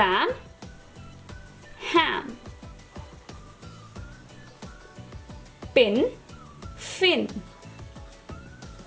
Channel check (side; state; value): both; identical; correlation 1.00